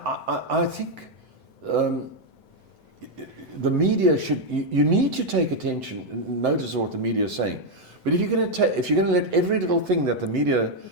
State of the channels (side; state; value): left; late; 7.8 ms